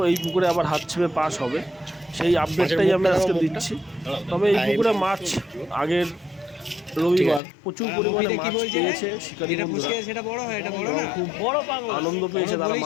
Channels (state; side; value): drops out; right; at 7.4 s